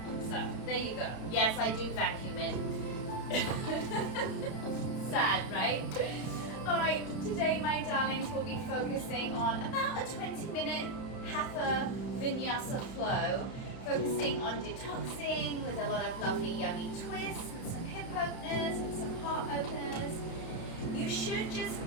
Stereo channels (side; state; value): right; late; 31 ms